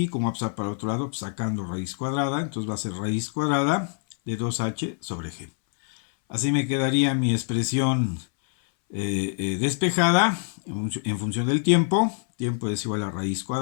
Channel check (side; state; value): right; silent; 61 dB below the other